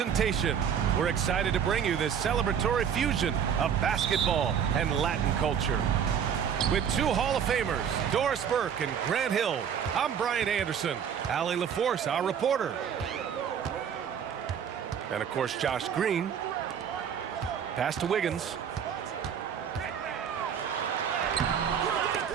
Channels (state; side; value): quieter; left; 8.0 dB